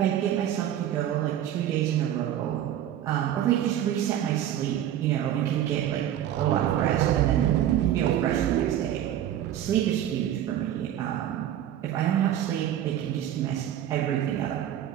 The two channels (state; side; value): quieter; left; 11.3 dB